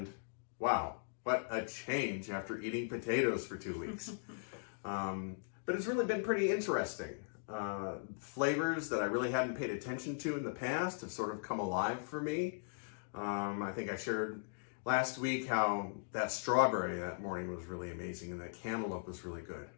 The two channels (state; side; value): silent; right; digital silence